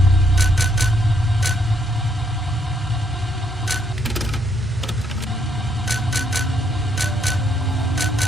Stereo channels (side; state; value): both; normal; correlation 0.72